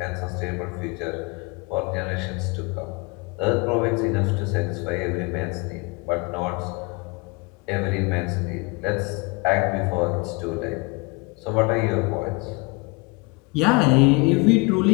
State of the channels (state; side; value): quieter; right; 27.8 dB